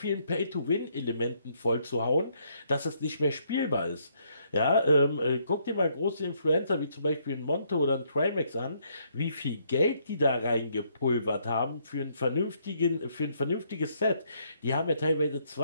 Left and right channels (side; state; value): both; inverted; correlation -0.71